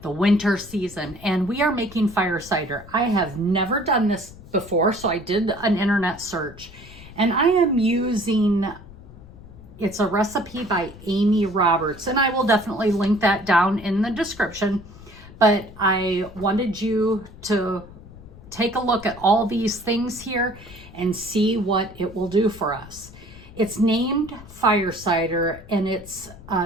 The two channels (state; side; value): noise; left; rumble, 18 dB below the sound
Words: the winter season, and we are making fire cider. I have never done this before, so I did an internet search. And I am using, it's a recipe by Amy Roberts, and I will definitely link that down in the description. But I wanted you to take a look at all these things here and see what it will do for us. It's named fire cider, and it's